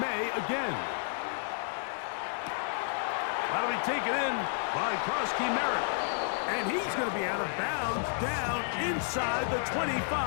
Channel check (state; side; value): silent; right; 57 dB below the other